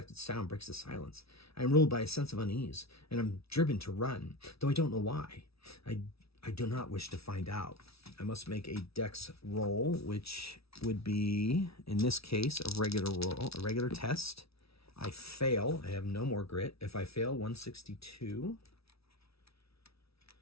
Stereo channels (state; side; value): late; right; 0.77 ms